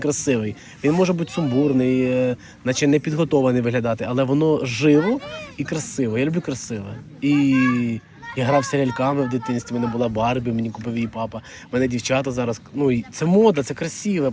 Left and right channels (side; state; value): both; identical; correlation 1.00